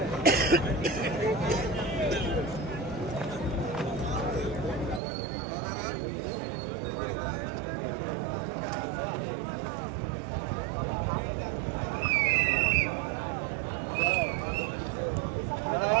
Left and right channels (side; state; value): left; drops out; at 5.0 s